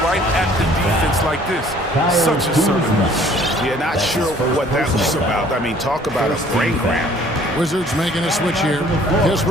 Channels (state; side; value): normal; both; correlation 0.56